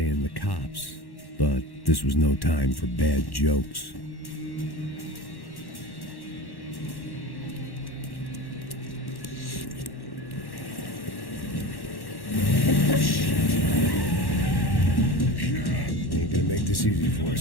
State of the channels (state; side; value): late; right; 1.1 ms